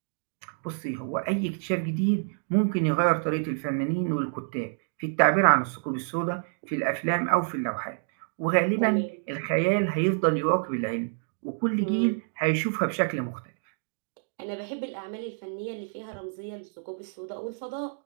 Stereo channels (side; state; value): left; silent; digital silence